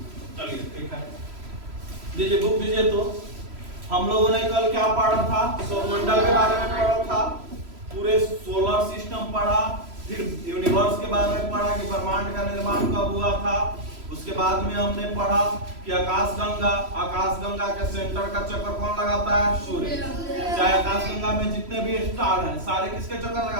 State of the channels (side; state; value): left; late; 3.0 ms